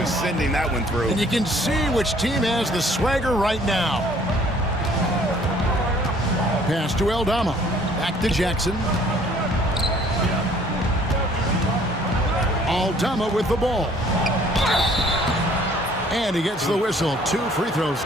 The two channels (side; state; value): both; normal; correlation 0.57